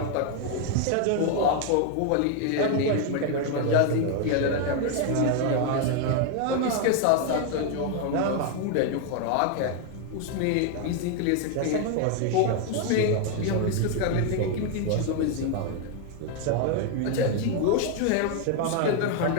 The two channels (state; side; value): different; both; correlation 0.01